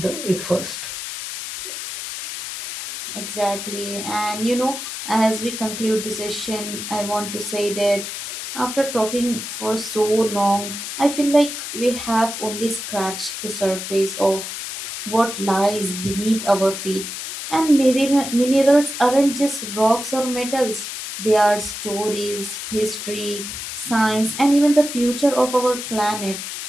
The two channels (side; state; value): left; noise; hiss, 7 dB below the sound